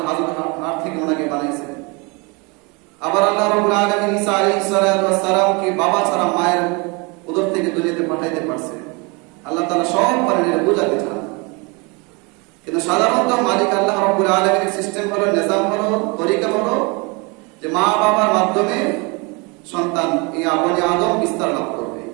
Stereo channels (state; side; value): quieter; left; 29.3 dB